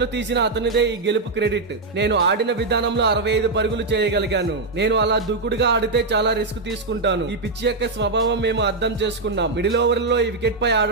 తీసిన అతనిదే ఈ గెలుపు క్రెడిట్. నేను ఆడిన విధానంలో 65 పరుగులు చేయగలిగాను. నేను అలా దూకుడుగా ఆడితే చాలా రిస్క్ తీసుకుంటాను. ఈ పిచ్ యొక్క స్వభావం మేము అర్థం చేసుకున్నాం. మిడిల్ ఓవర్ లో ఈ వికెట్ పై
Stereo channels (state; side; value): quieter; left; 3.5 dB